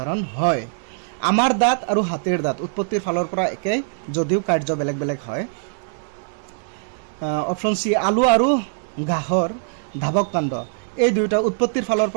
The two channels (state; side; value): silent; left; digital silence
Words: হয়। আমাৰ দাঁত আৰু হাতীৰ দাঁত উৎপত্তিৰ ফালৰ পৰা একে, যদিও কাৰ্য বেলেগ বেলেগ হয়। অপশ্যন চি, আলু আৰু ঘাঁহৰ ধাৱক কাণ্ড, এই দুয়োটা উৎপত্তিৰ ফালৰ